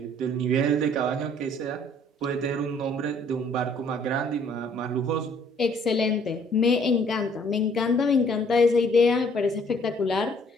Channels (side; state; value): both; normal; correlation 0.60